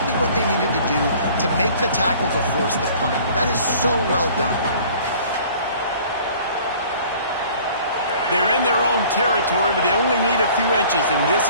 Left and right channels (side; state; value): both; inverted; correlation -0.50